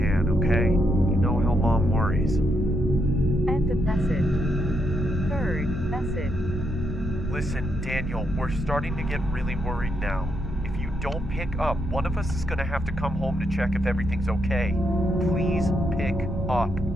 okay? You know how Mom worries. End of message. Third message. Listen, Daniel, we're starting to get really worried now. If you don't pick up, one of us is going to have to come home to check if everything's okay. Please pick up.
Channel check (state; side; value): noise; right; hum, 14 dB below the sound